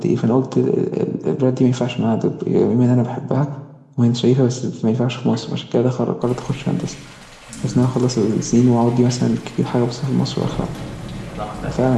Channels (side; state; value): both; identical; correlation 1.00